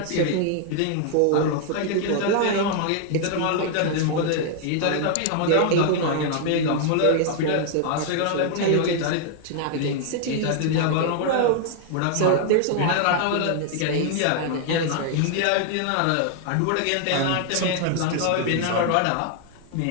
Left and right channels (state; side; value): different; both; correlation 0.00